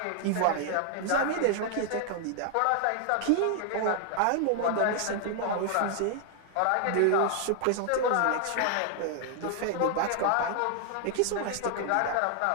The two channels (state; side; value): different; both; correlation 0.00